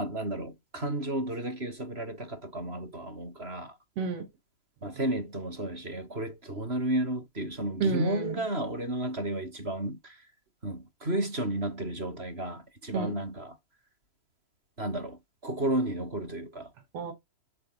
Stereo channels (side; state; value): left; late; 3.0 ms